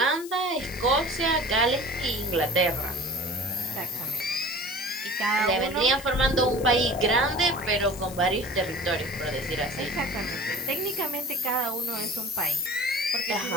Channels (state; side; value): noise; left; hiss, 15 dB below the sound